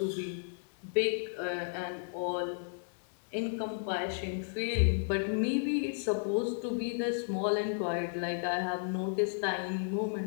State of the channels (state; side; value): silent; right; digital silence